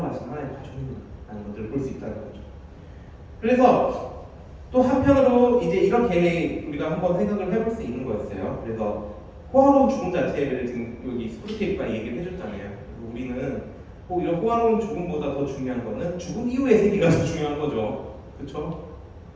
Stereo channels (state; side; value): identical; both; correlation 1.00